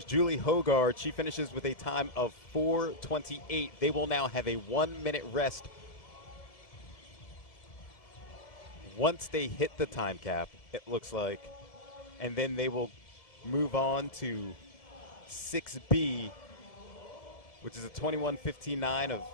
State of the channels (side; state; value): right; late; 2.1 ms